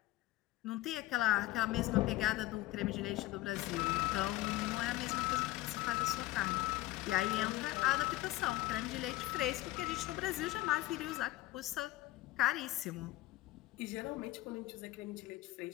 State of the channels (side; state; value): right; quieter; 17.5 dB